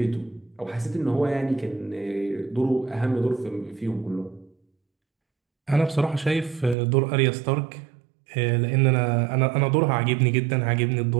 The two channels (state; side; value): drops out; left; at 6.8 s